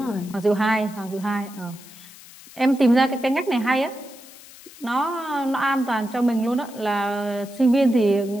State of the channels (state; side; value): noise; left; hiss, 20 dB below the sound